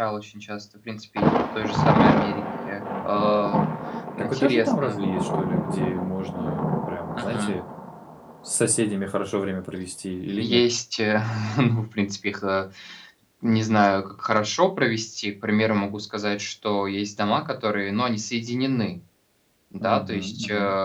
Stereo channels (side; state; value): both; identical; correlation 1.00